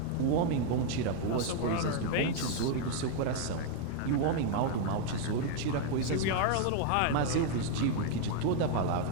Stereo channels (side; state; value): both; different; correlation 0.00